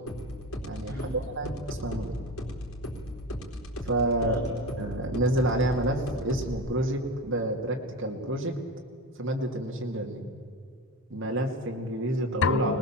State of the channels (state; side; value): normal; both; correlation 0.26